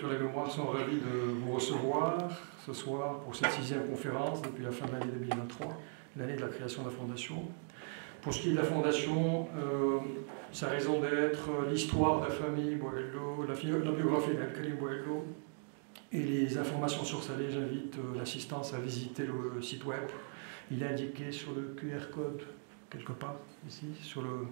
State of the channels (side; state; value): left; silent; 52 dB below the other